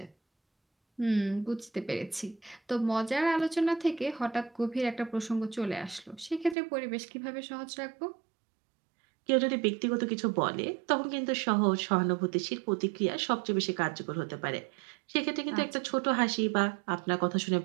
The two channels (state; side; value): drops out; left; at 6.6 s